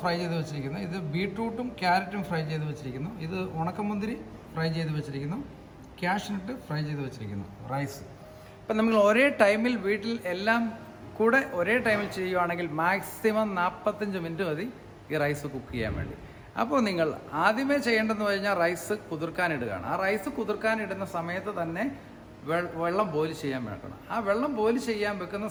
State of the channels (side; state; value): both; identical; correlation 1.00